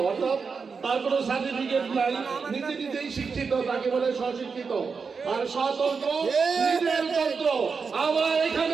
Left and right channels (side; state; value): left; quieter; 5.3 dB